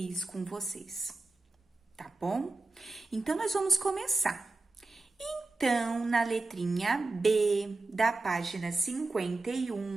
com vocês, tá bom? Então, nós vamos começar. Então, na letrinha B da página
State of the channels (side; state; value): left; quieter; 3.2 dB